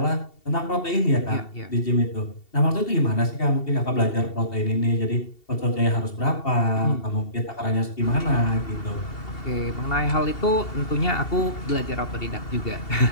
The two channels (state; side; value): late; right; 2.7 ms